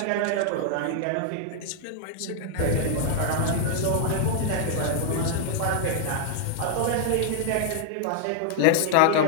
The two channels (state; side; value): different; both; correlation -0.01